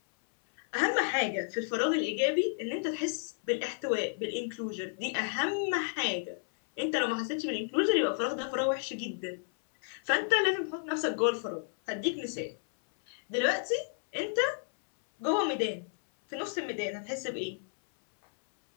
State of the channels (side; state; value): right; silent; 57 dB below the other